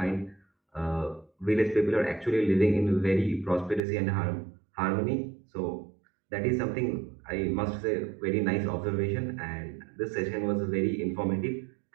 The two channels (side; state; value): left; drops out; at 3.8 s